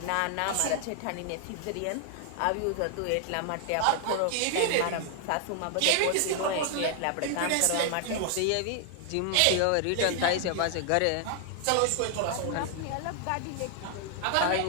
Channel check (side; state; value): both; different; correlation 0.00